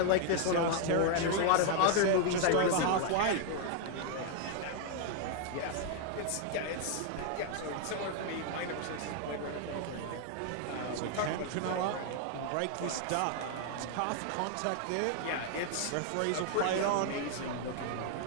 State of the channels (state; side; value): different; both; correlation 0.00